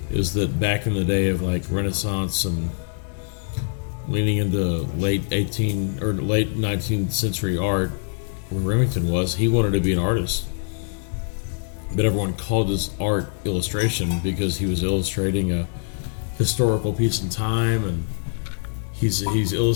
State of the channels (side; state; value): right; silent; 63 dB below the other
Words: is that back in the day of like Renaissance and leaning into late 19th century art, where Remington was, he wanted to be an artist. But everyone called his art illustration because he was illustrating a historical piece in time, and he's